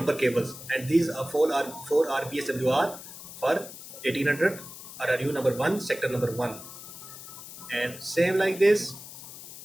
cables, and these are 4 are VSWR for 1800 RRU number 1, sector number 1. And same like this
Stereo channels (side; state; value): left; noise; hiss, 14 dB below the sound